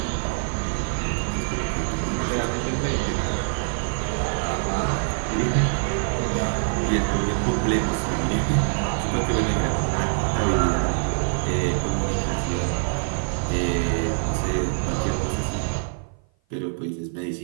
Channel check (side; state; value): left; silent; 56 dB below the other